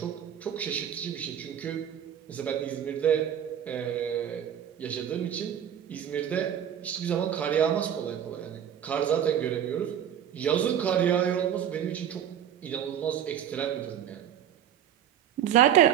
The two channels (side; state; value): left; quieter; 9.6 dB